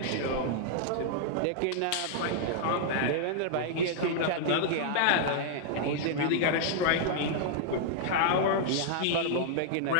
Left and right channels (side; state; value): both; different; correlation -0.01